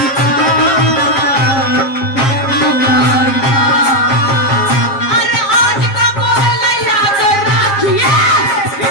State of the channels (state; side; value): late; right; 7.4 ms